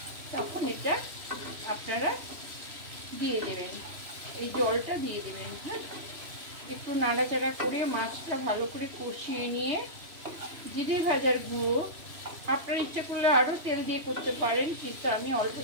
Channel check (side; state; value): left; late; 3.0 ms